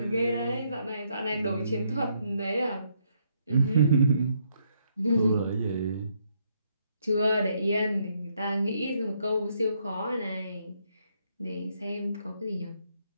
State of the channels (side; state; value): both; inverted; correlation -0.73